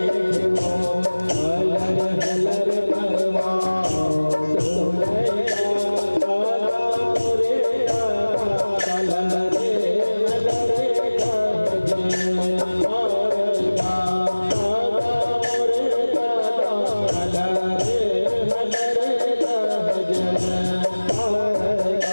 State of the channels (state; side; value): inverted; both; correlation -1.00